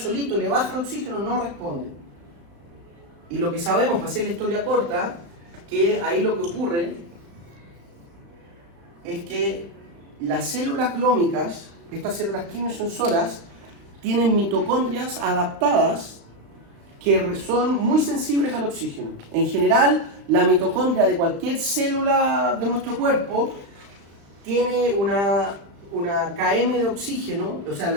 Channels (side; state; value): left; late; 35 ms